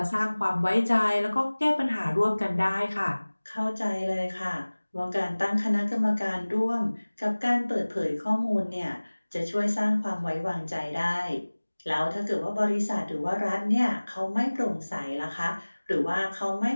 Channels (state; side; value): inverted; both; correlation -1.00